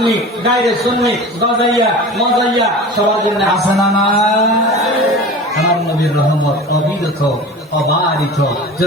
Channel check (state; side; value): normal; both; correlation 0.35